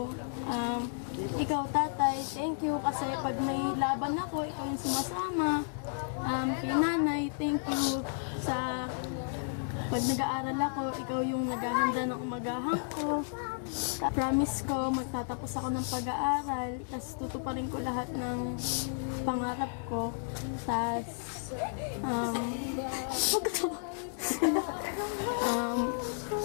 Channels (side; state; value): right; silent; digital silence